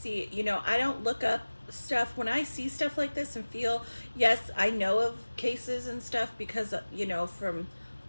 I don't look up stuff when I see stuff like this and feel, yes, I know of cases and stuff because, from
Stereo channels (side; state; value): both; inverted; correlation -1.00